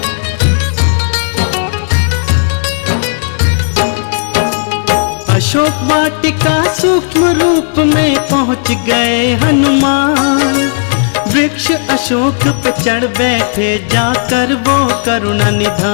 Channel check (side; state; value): right; silent; 72 dB below the other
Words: अशोक वाटिका सूक्ष्म रूप में पहुंच गए हनुमान। वृक्ष अशोक पे चढ़ बैठे, जाकर वो करुणा